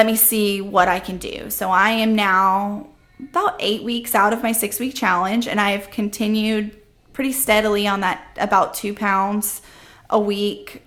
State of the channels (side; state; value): both; identical; correlation 1.00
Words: me see what I can do. So I am now about 8 weeks out of my 6-week challenge, and I've continued pretty steadily on that, about 2 pounds a week,